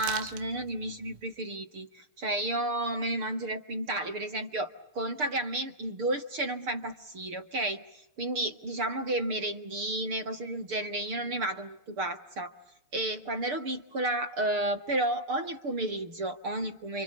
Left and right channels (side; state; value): left; late; 6.7 ms